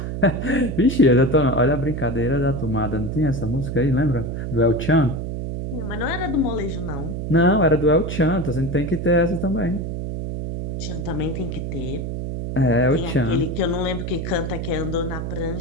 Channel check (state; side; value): noise; right; hum, 4 dB below the sound